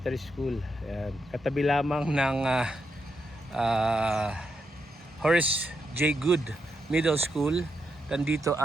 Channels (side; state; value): both; normal; correlation 0.82